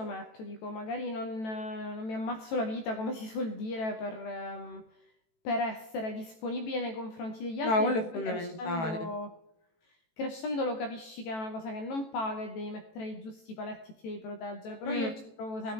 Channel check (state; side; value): late; right; 18 ms